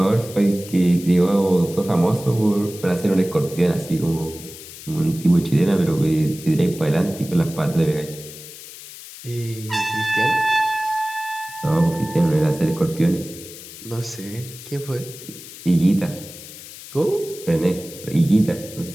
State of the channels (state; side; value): noise; left; hiss, 15 dB below the sound